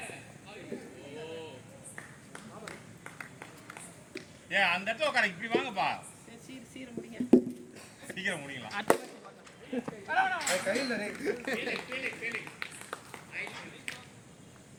அந்த இடத்துல உட்கார இப்படி வாங்கப்பா. சீக்கிரம் முடிங்க. சீக்கிரம் முடிக்கலாம்.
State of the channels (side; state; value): both; identical; correlation 1.00